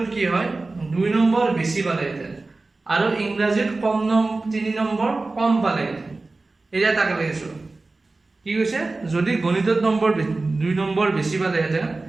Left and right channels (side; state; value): left; quieter; 3.4 dB